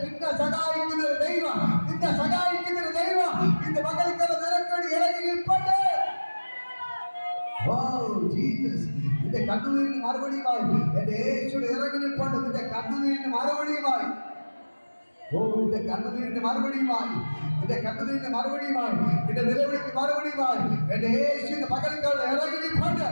നിന്നെ സഹായിക്കുന്ന ഒരു ദൈവം, നിന്നെ സഹായിക്കുന്ന ഒരു ദൈവം ഇന്ന് മകൾക്കാരെ നിരക്കടി ഇറങ്ങി നിൽപ്പട്ടെ. നിന്റെ കണ്ണുനീരിന് മറുപടിയുമായി എന്റെ യേശുവിടെ ഇറങ്ങി നിൽപ്പണ്ട്. നിന്റെ കണ്ണുനീരിന് മറുപടിയുമായി, നിന്റെ കണ്ണുനീരിന് മറുപടിയുമായി, നിന്റെ കണ്ണുനീരിന് മറുപടിയുമായി, നിന്റെ നിലവിളിക്ക് മറുപടിയുമായി എന്റെ യേശുവിന്റെ പകൽക്കാരുടെ ഇറങ്ങി നിൽപ്പണ്ട്.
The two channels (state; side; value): inverted; both; correlation -1.00